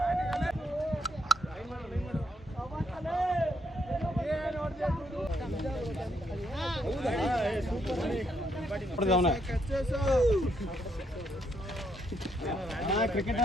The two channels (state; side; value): normal; both; correlation 0.75